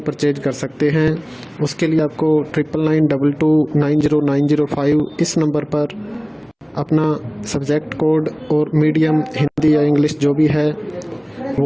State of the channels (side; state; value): both; identical; correlation 1.00